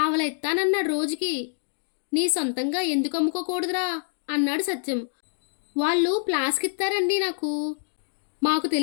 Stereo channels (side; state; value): right; silent; digital silence